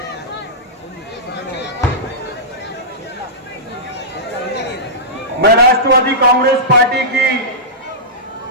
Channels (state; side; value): normal; both; correlation -0.16